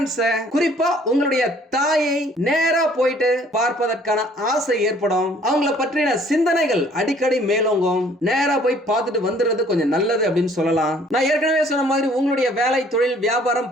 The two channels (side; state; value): both; normal; correlation 0.58